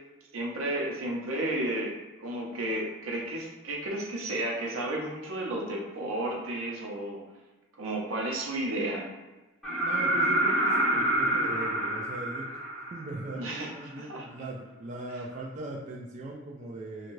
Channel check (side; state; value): both; normal; correlation 0.22